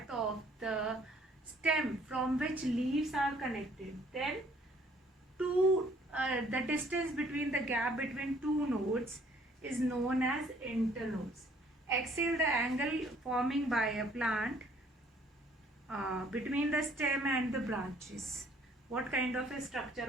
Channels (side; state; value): both; normal; correlation 0.60